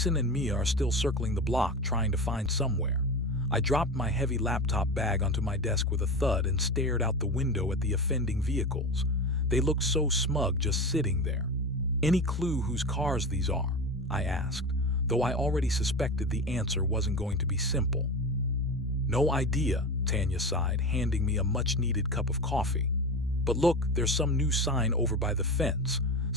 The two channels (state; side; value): normal; both; correlation 0.25